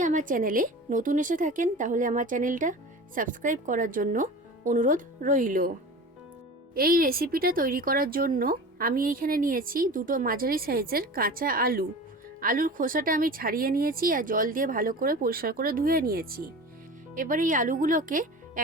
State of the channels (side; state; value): both; normal; correlation 0.35